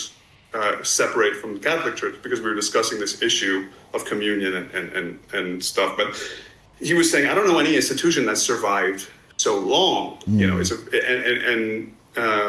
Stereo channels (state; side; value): identical; both; correlation 1.00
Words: separate from the Catholic Church, because we were discussing this issue of communion and stuff. But he was saying, I don't know any institution that survived so long.